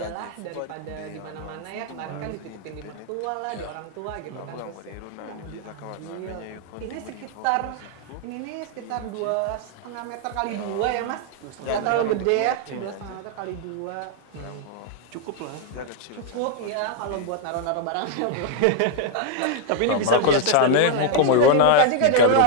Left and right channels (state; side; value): different; both; correlation 0.00